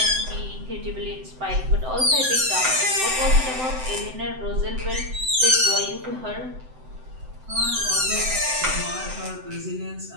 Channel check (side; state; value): left; late; 7.8 ms